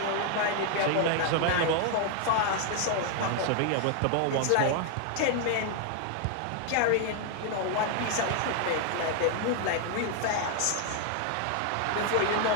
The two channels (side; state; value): both; different; correlation 0.00